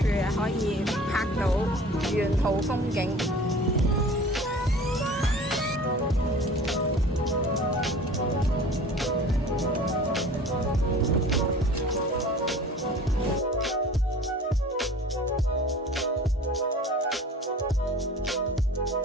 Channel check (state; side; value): normal; both; correlation 0.43